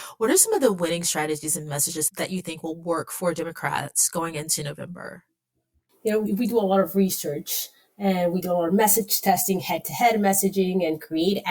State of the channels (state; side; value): identical; both; correlation 1.00